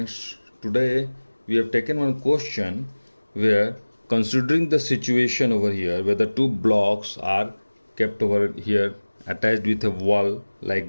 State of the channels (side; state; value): both; inverted; correlation -1.00